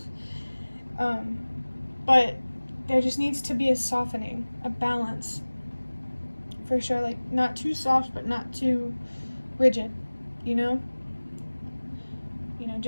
But there just needs to be a softening, a balance. For sure, like not too soft, but not too rigid, you know? You know,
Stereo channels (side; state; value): both; inverted; correlation -1.00